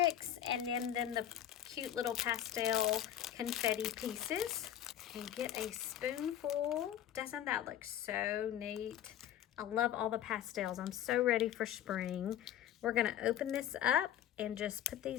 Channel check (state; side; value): quieter; right; 11.0 dB